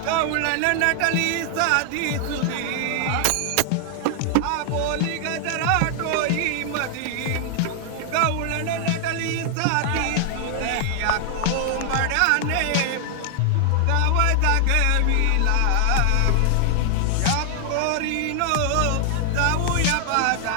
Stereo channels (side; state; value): both; different; correlation 0.00